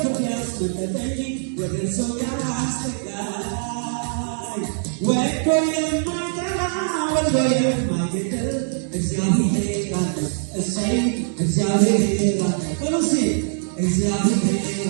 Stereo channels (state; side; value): silent; left; digital silence